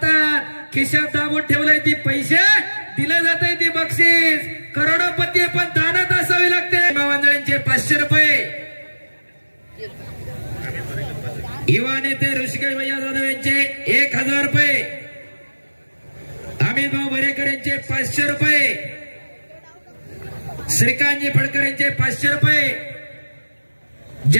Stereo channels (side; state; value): both; inverted; correlation -1.00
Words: खिशात दाबून ठेवलंय ती पैसे दिले जात आहे ती बक्षीस. करोडोपती पण दानात असावी लागते. मावंजळींचे 500 रुपये. युवा नेते ऋषिकेश भैया जाधव यांचे 1000 रुपये. अमित भाऊ बरेकर यांचे 500 रुपये. श्रीकांतजी फडकर यांचे 500 रुपये.